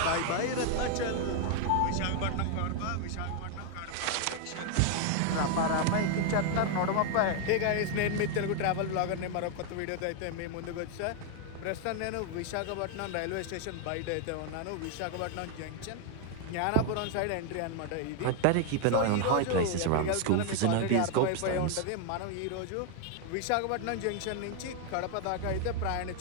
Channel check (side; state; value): both; different; correlation 0.00